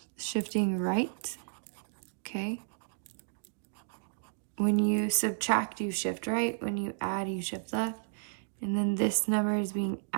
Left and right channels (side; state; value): left; silent; digital silence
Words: right, okay? When you subtract, you shift right. When you add, you shift left. And then this number is being